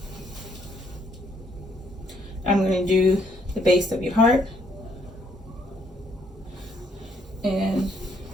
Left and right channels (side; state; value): both; normal; correlation 0.69